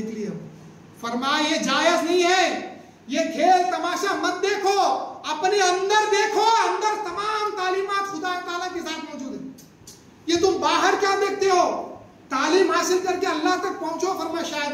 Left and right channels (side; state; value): both; identical; correlation 1.00